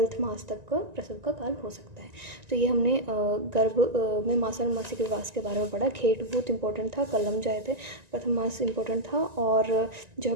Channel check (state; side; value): late; left; 1.9 ms